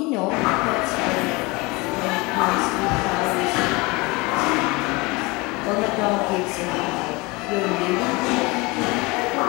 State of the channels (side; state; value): right; quieter; 24.4 dB